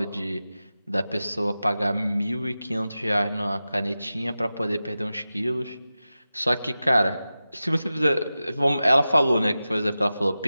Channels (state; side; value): inverted; both; correlation -0.94